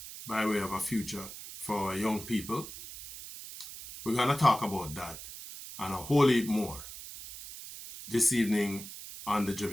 by way of a future for our young people? We're going to talk about that and a whole heap more this evening on the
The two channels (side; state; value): right; noise; hiss, 12 dB below the sound